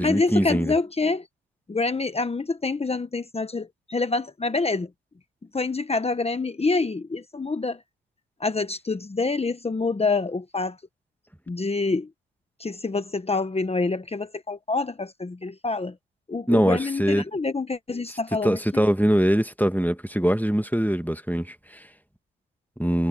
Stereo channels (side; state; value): both; normal; correlation 0.75